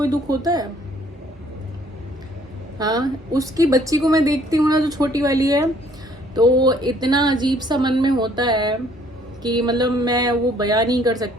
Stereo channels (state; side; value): normal; both; correlation 0.61